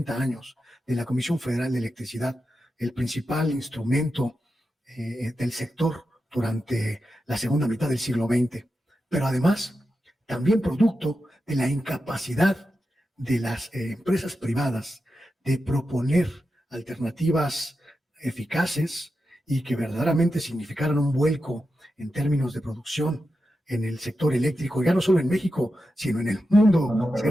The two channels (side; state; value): both; normal; correlation 0.90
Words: años de la Comisión Federal de Electricidad, el principal instrumento del sector durante la segunda mitad del siglo XX, pero además también producto de la incapacidad de las empresas privadas de proponer alternativas eficaces y que verdaderamente significaran un vuelco en términos de producción en el sector eléctrico, ya no solo en México, sino en el mundo, No,